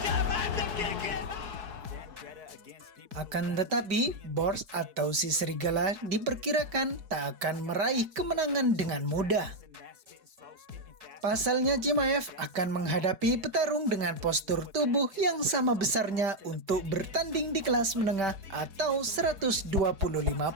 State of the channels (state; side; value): late; left; 5.1 ms